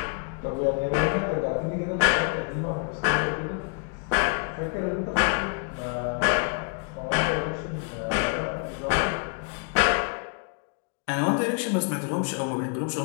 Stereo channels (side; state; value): right; quieter; 38.7 dB